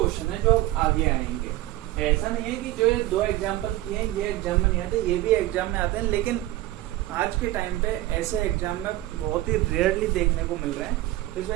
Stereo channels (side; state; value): left; quieter; 16.5 dB